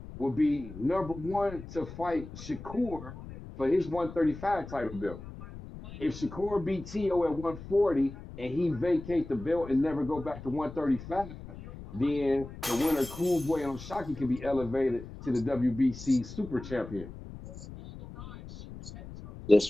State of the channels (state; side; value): noise; left; rumble, 13 dB below the sound